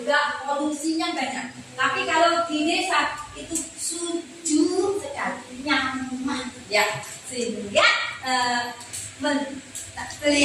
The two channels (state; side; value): identical; both; correlation 1.00